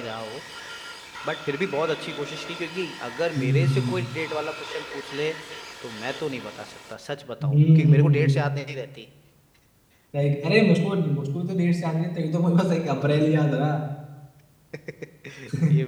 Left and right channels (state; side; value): identical; both; correlation 1.00